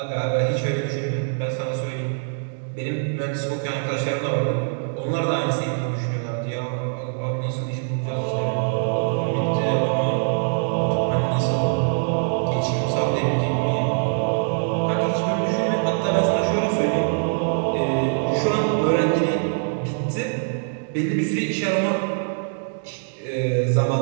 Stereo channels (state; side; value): silent; left; digital silence